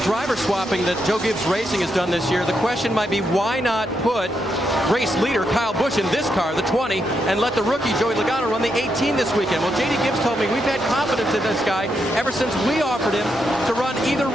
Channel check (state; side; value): normal; both; correlation 0.81